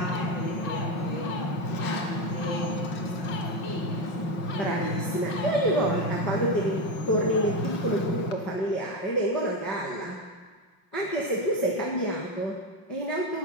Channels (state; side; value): late; right; 5.5 ms